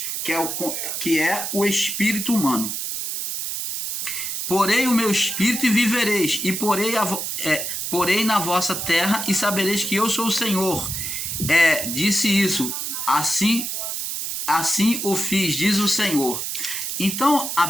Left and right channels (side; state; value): right; noise; hiss, 3 dB below the sound